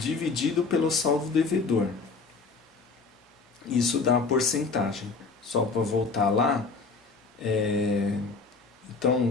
pelo saldo devedor. Isso dá a porcentagem. Só para voltar lá,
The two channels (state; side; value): quieter; right; 4.4 dB